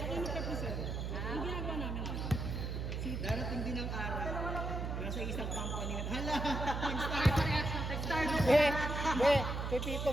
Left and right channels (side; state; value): right; noise; hum, 3 dB below the sound